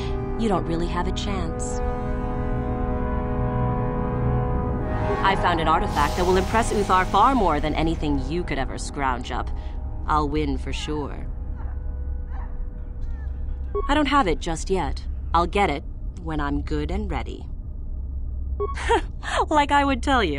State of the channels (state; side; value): identical; both; correlation 1.00